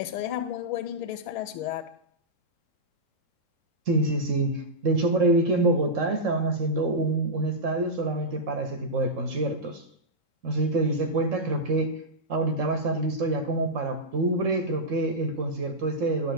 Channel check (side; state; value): left; late; 3.7 ms